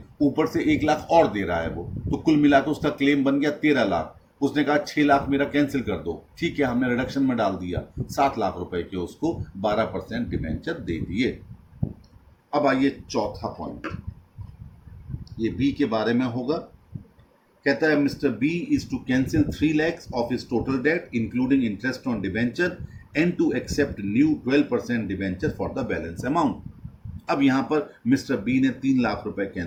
ऊपर से 1 लाख और दे रहा है वो, तो कुल मिलाकर उसका क्लेम बन गया 13 लाख। उसने कहा 6 लाख मेरा कैंसिल कर दो, ठीक है, हमने रिडक्शन में डाल दिया 7 लाख रुपए के, उसको 12% डिबेंचर दे दिए। अब आइए चौथा पॉइंट, ये बी के बारे में होगा। कहता है Mr B is to cancel 3 lakhs of his total debt including interest on debenture and to accept new 12% debenture for the balance amount. अब यहां पर मिस्टर बी ने 3 लाख रुपए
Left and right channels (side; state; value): both; identical; correlation 1.00